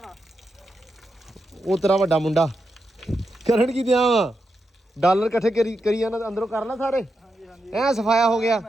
ਆ? ਉਹ ਤੇਰਾ ਵੱਡਾ ਮੁੰਡਾ। ਕਰਨ ਕੀ ਦਿਆਂ ਵਾ? ਡਾਲਰ ਇਕੱਠੇ ਕਰੀ ਜਾਂਦਾ ਅੰਦਰੋਂ ਕਰ ਲੈ ਸਾਰੇ। ਹਾਂਜੀ ਹਾਂਜੀ ਐ ਸਫਾਇਆ ਹੋ ਗਿਆ।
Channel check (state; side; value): normal; both; correlation 0.86